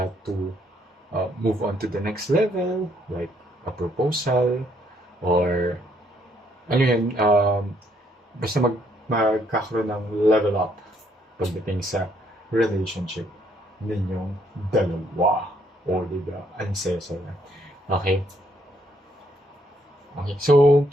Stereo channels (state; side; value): normal; both; correlation 0.70